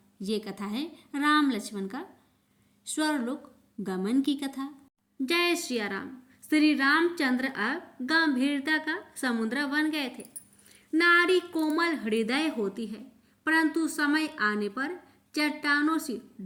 ये कथा है राम लक्ष्मण का स्वर्गलोक गमन की कथा। जय श्री राम। श्री रामचंद्र अब गंभीरता का समुद्र बन गए थे। नारी कोमल हृदय होती है, परंतु समय आने पर चट्टानों से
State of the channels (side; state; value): both; identical; correlation 1.00